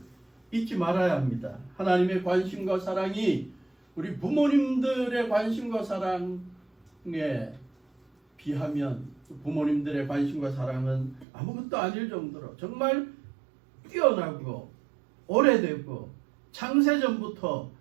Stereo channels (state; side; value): drops out; left; at 11.2 s